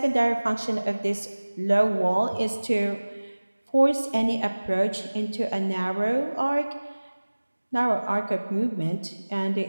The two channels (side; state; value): both; inverted; correlation -1.00